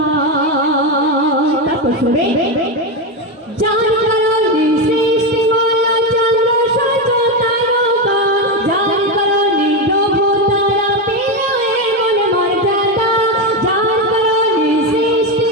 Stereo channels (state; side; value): normal; both; correlation 0.12